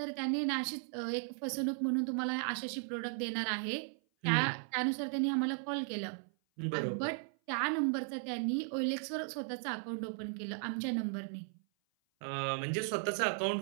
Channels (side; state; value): left; silent; 54 dB below the other